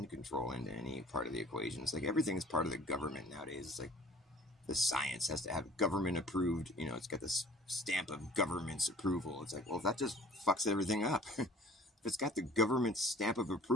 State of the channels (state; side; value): normal; both; correlation 0.50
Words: control into any part of the equation, it's like everything is part of the government nowadays. It's like the science has to have government approved, it's got this stamp of government's approval. It's like, well, that just fucks everything up. If it's got the government stamp of